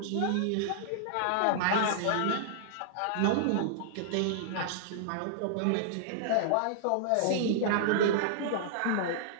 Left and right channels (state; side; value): different; both; correlation -0.01